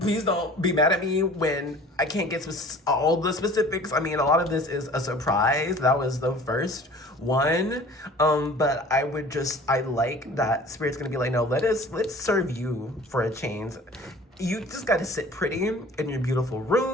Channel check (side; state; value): both; normal; correlation 0.46